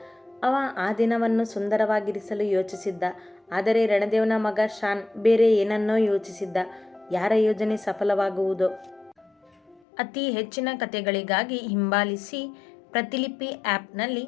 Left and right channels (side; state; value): right; drops out; at 9.8 s